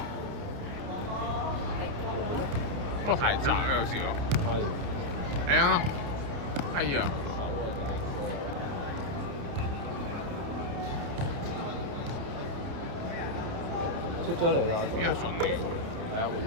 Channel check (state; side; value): late; left; 29 ms